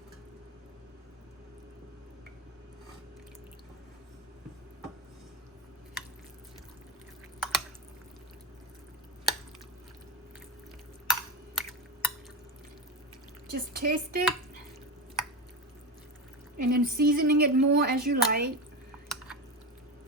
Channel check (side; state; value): both; normal; correlation 0.18